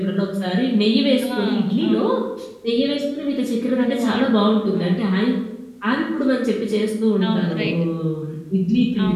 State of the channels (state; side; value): identical; both; correlation 1.00